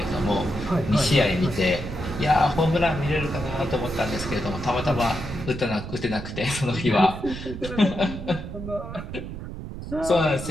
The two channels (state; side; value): noise; right; rumble, 9 dB below the sound